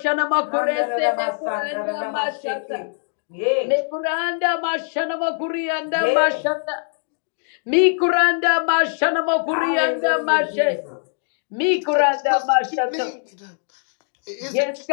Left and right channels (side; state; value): right; silent; 64 dB below the other